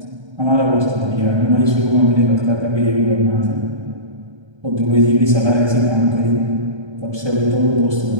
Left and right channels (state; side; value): late; left; 1.3 ms